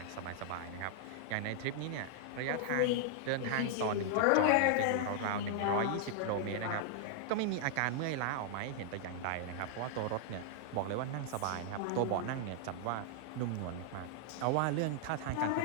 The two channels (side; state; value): both; different; correlation -0.01